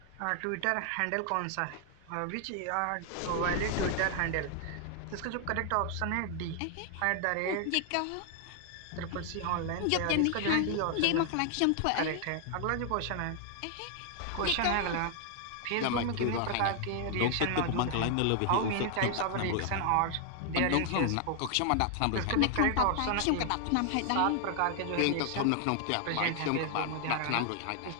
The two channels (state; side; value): different; both; correlation 0.00